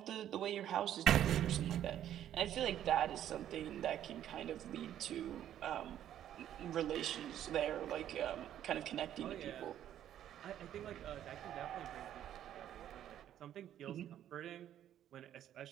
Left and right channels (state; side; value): quieter; left; 11.1 dB